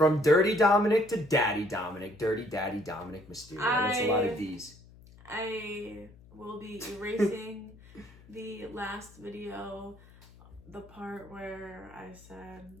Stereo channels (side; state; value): left; noise; hum, 23 dB below the sound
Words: Dirty Dominic to Daddy Dominic. Dirty Daddy Dominic Mysterio. That's a lot of D's. I will be erasing the last video, the part where I